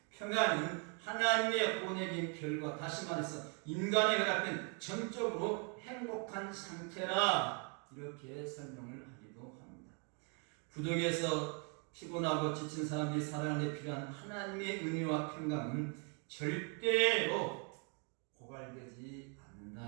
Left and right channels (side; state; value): left; quieter; 36.8 dB